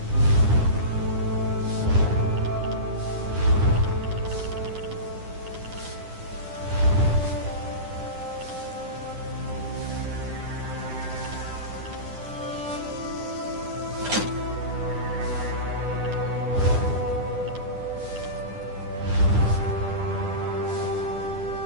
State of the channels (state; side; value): late; left; 9.9 ms